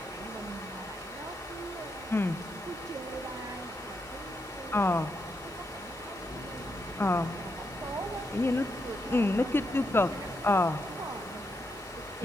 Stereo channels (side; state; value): left; noise; hiss, 25 dB below the sound